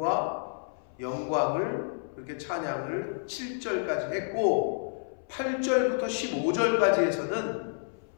영광을 그렇게 찬양을 7절까지 했고 8절부터 15절까지에서는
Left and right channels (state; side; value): silent; right; 58 dB below the other